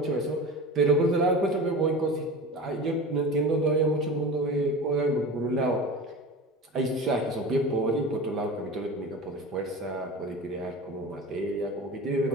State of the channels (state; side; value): normal; both; correlation 0.32